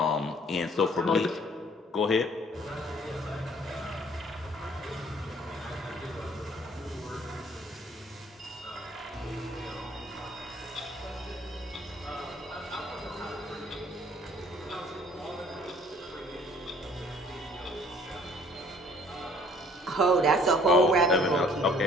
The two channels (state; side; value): normal; both; correlation 0.57